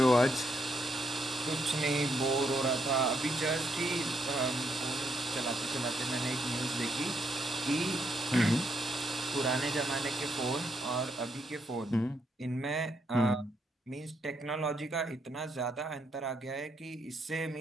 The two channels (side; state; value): both; normal; correlation 0.77